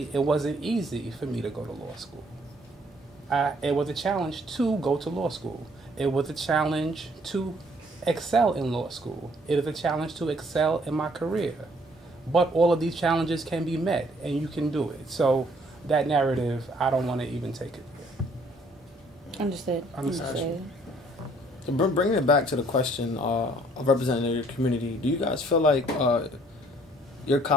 it wasn't easy for me to go to law school. It was a challenge to go to law school. It was a challenge to excel in law school. It is a challenge to excel in my career. But all of these challenges can be met, and you can do it. So that narrative, I don't want to even take it there. Understood. So bringing it back to the question of representing your community, do you guys feel like your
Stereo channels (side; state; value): both; normal; correlation 0.62